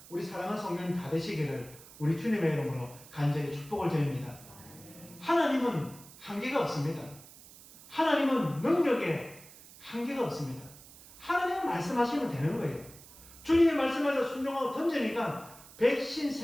우리 사랑하는 성도님 다 되시기를 우리 주님의 이름으로 간절히 축복을 드립니다. 하나님은 한계가 없습니다. 하나님은 능력에 한계가 없습니다. 하나님은 말씀하시면 되는 거예요. 주님의 말씀에서 순종하고 던지니까 백신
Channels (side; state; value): right; noise; hiss, 20 dB below the sound